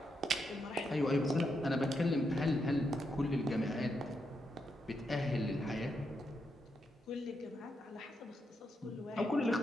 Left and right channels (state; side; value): normal; both; correlation 0.82